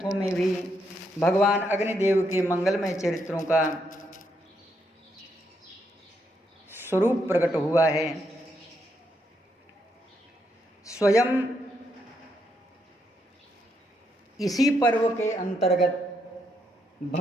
में भी भगवान अग्निदेव के मंगलमय चरित्रों का स्वरूप प्रकट हुआ है। स्वयं इसी पर्व के अंतर्गत,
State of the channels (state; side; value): normal; both; correlation 0.78